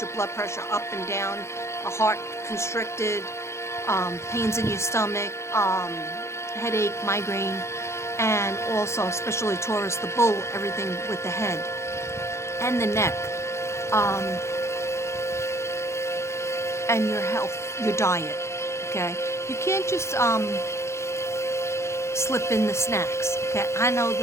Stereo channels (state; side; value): late; right; 0.13 ms